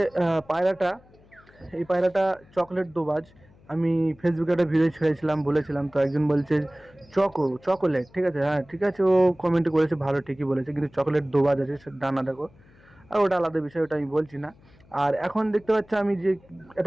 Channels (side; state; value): left; noise; hum, 28 dB below the sound